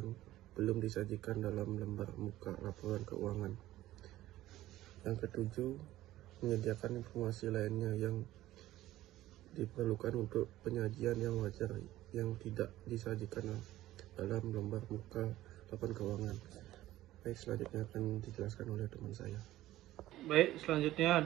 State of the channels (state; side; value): quieter; left; 15.1 dB